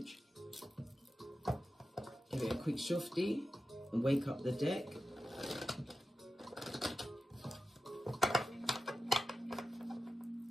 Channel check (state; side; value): normal; both; correlation 0.92